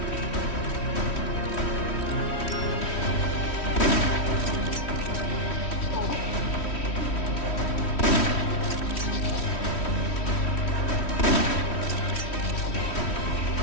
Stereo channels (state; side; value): late; right; 3.1 ms